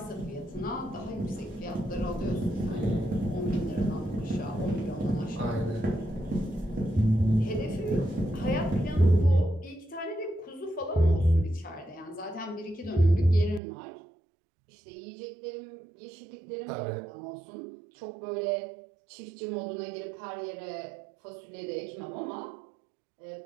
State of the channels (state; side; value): drops out; left; at 13.6 s